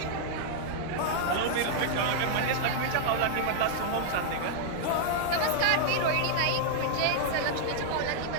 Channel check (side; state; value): both; different; correlation -0.01